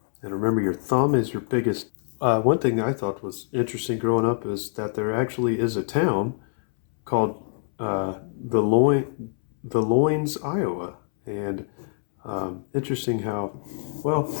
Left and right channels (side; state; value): right; silent; 61 dB below the other